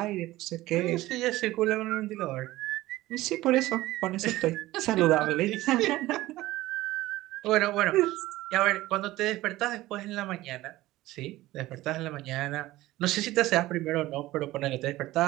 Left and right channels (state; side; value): quieter; left; 17.2 dB